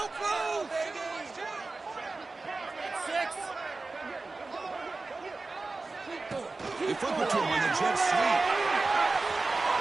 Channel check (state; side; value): quieter; left; 3.6 dB